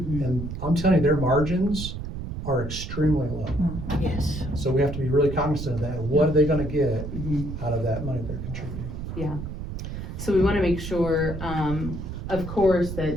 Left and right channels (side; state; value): right; noise; rumble, 7 dB below the sound